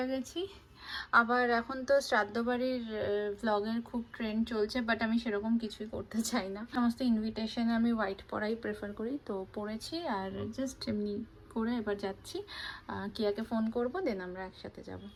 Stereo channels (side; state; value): both; identical; correlation 1.00